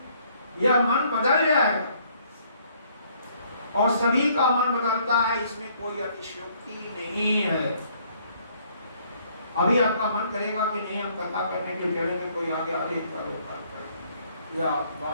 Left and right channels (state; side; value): inverted; both; correlation -0.64